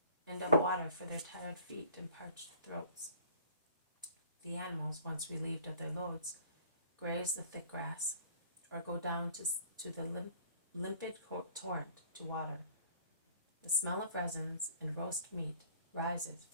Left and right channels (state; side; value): inverted; both; correlation -0.51